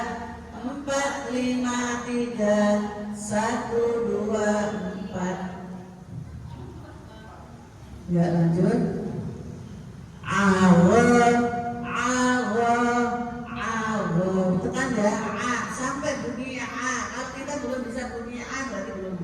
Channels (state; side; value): identical; both; correlation 1.00